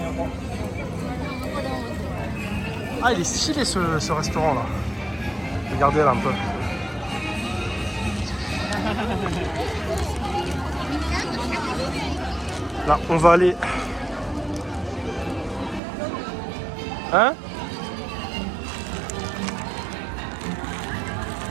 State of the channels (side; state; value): left; drops out; at 15.8 s